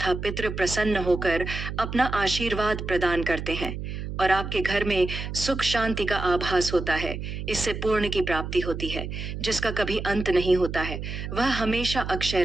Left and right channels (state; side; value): noise; right; hum, 6 dB below the sound